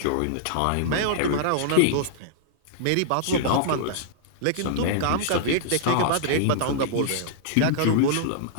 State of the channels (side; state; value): both; different; correlation -0.02